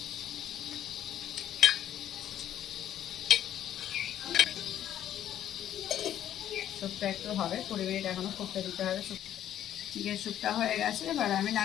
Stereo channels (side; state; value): right; quieter; 11.1 dB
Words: স্যুপটা একটু হবে, 20 মিনিট এখনো ফুটতে দিতে হবে। চিকেন স্যুপটা হয়ে গেছে, এবার আমি